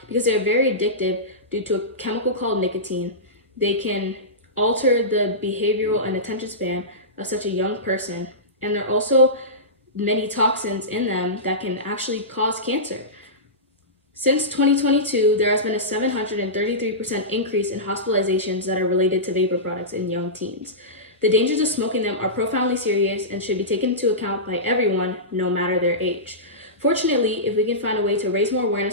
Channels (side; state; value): both; normal; correlation -0.18